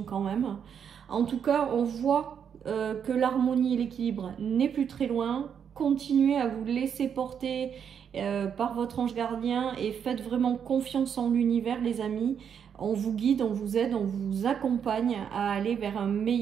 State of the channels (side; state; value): left; quieter; 7.8 dB